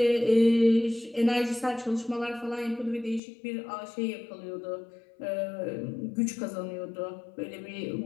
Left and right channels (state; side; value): drops out; right; at 3.2 s